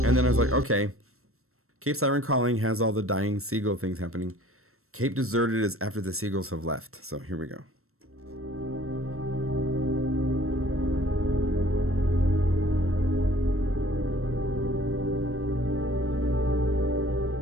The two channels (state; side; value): late; left; 0.63 ms